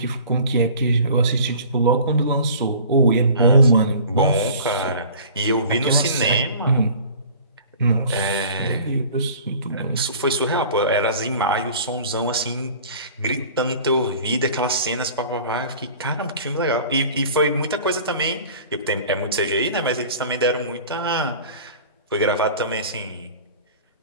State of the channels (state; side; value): inverted; both; correlation -0.45